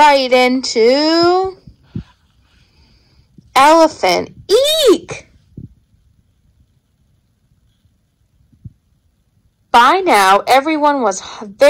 into Elephant. Eek! By now, everyone was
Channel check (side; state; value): both; identical; correlation 1.00